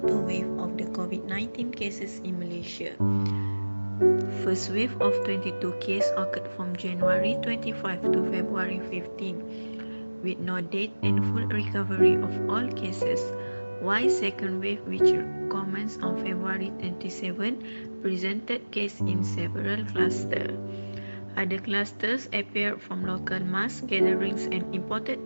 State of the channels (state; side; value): inverted; both; correlation -1.00